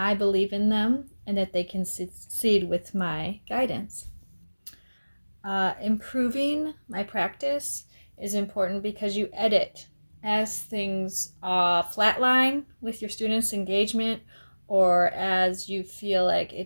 believe in them and that they can succeed with my guidance. Improving my practice is important because you edit as things flatline with your students' engagement, or as you feel like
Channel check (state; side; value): inverted; both; correlation -1.00